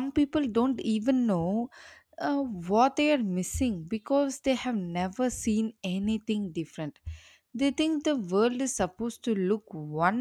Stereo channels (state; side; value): identical; both; correlation 1.00